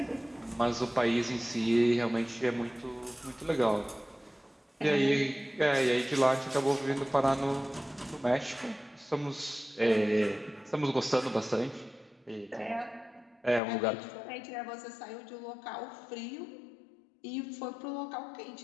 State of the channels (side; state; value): right; drops out; at 13.6 s